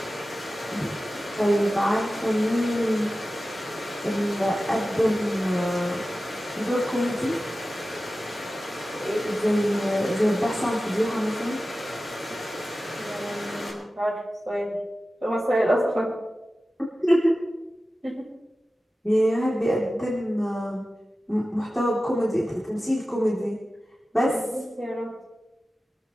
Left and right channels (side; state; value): both; normal; correlation 0.95